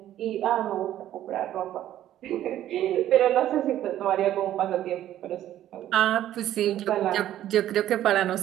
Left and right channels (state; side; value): quieter; left; 12.4 dB